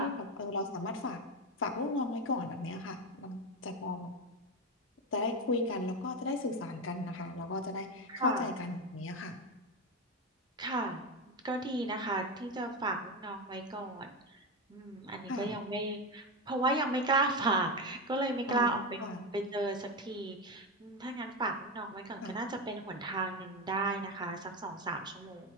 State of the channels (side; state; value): both; normal; correlation 0.15